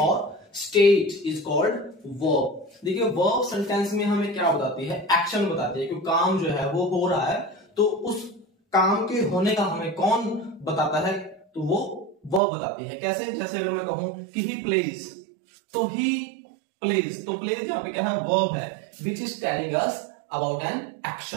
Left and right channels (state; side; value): drops out; left; at 12.4 s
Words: और स्टेट इज कॉल्ड वर्ब। देखिए, वर्ब सेंटेंस में हमें क्या बताती है, एक्शन बताती है कि काम जो है वो हो रहा है, तो उस काम के होने का हमें कौन बताता है, तो वो वर्ब बताती है। कैसे? जैसे अगर मैं कहूं कि ही प्लेज, तो ही प्लेज, तो प्लेज यहाँ पे क्या है, वर्ब है which is telling us about an